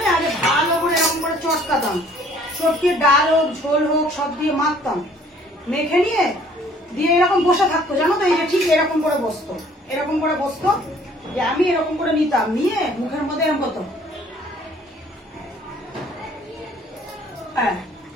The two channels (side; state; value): both; normal; correlation 0.57